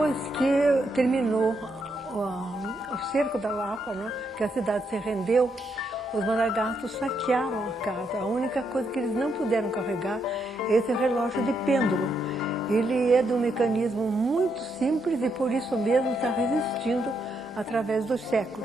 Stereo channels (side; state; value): both; normal; correlation 0.78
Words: que terminou o cerco da Lapa, né, que a cidade se rendeu, os Maragatos saquearam a casa. A única coisa que eles não puderam carregar é esse relógio de pêndulo. Ele é de um mecanismo muito simples e por isso mesmo está resistindo através dos